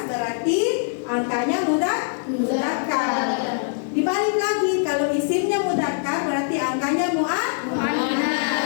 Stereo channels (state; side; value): silent; right; 60 dB below the other